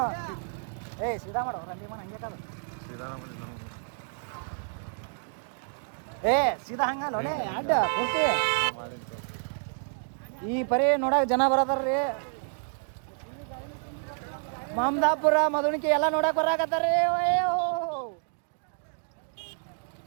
ಏ ಸೀದಾ ಮಾಡೋ ರಂಡಿ ಮನ ಹಂಗೆ ಕಾದ ಏ ಸೀದಾ ಹಂಗಲ್ಲ ಒಲೆ ಅಡ್ಡ ಪೂರ್ತಿ ಈ ಪರಿ ನೋಡಕ್ ಜನ ಬರತಾರ್ರಿ ಮಮದಾಪುರ ಮಧುಣಿಕೆ ಎಲ್ಲ ನೋಡಕ್ ಬರಾಕತ್ತಾರ್ರಿ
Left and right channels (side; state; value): left; silent; digital silence